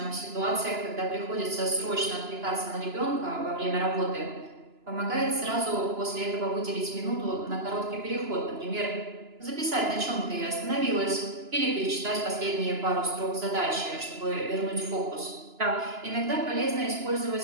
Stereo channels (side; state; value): left; late; 2.9 ms